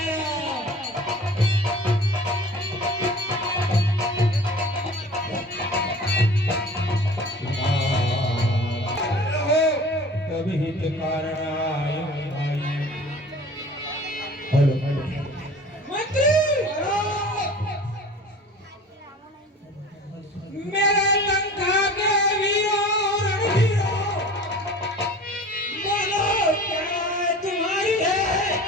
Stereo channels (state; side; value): normal; both; correlation 0.42